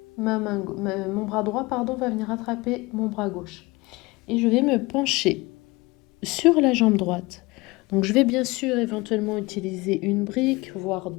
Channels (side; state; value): right; quieter; 23.0 dB